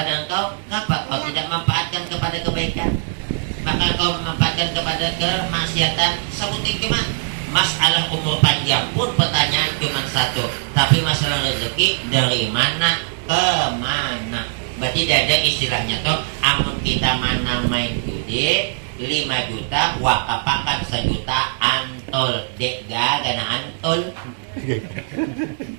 engkau, kenapa kau tidak manfaatkan kepada kebaikan, maka kau memanfaatkan kepada kemaksiatan? Sebutin cuma. Masalah umur panjang pun pertanyaan cuma satu, tapi masalah rezeki dari mana ke mana. Berarti tidak ada istilahnya toh, amun kita mana main judi 5 juta wakapakan 1 juta antol dek gana antol.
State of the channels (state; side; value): silent; left; digital silence